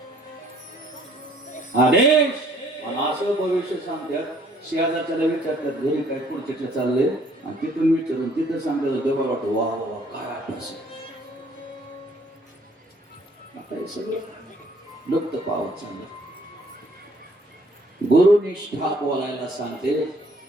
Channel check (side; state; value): both; normal; correlation 0.61